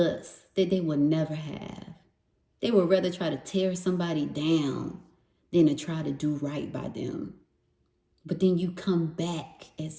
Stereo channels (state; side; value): identical; both; correlation 1.00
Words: that they will never have. They would rather try to tear somebody down than to try to do right by them. But then you come back